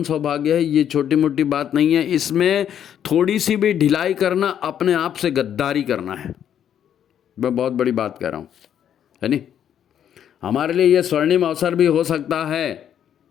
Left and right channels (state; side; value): quieter; right; 9.5 dB